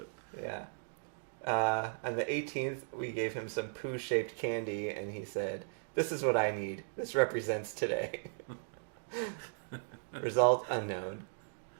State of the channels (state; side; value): silent; left; digital silence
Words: Yeah. On the 18th, we gave him some poo-shaped candy, and he said, this is what I need. This represents today. Result unknown.